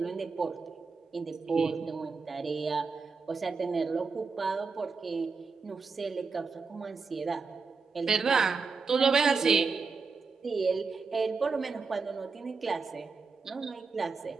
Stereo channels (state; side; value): quieter; left; 4.7 dB